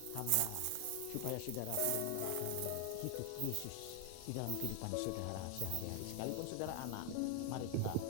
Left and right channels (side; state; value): both; different; correlation 0.00